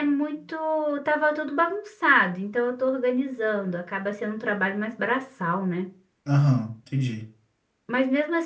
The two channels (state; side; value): identical; both; correlation 1.00